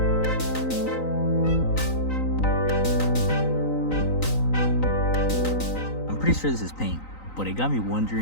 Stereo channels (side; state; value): right; late; 3.9 ms